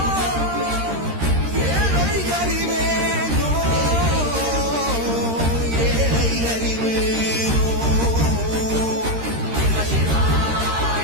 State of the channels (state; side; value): late; left; 13 ms